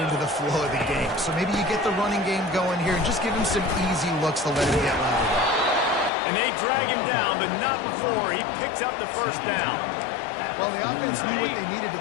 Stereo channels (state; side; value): drops out; right; at 6.1 s